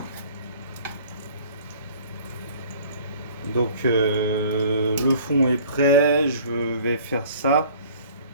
Donc le fond est prêt, je vais faire ça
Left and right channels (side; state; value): both; inverted; correlation -0.50